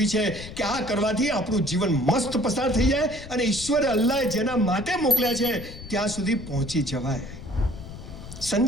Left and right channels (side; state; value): left; noise; rumble, 13 dB below the sound